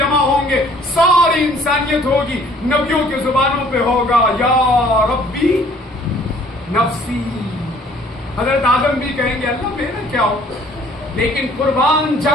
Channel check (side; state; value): both; normal; correlation 0.56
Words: ہوں گے. ساری انسانیت ہوگی. نبیوں کے زبانوں پہ ہوگا یا ربی نفسی. حضرت آدم بھی کہیں گے اللہ میرا کیا ہو، لیکن قربان